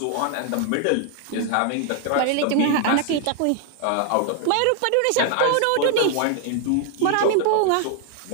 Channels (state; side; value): different; both; correlation 0.00